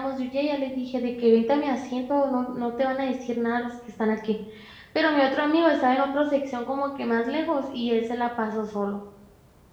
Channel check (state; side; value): identical; both; correlation 1.00